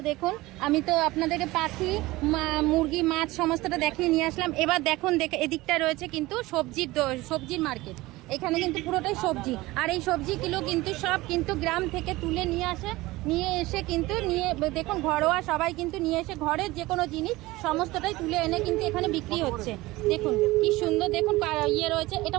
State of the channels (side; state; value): left; quieter; 19.7 dB